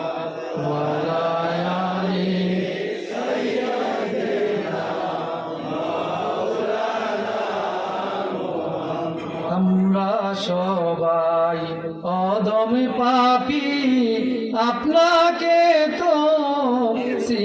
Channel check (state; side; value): identical; both; correlation 1.00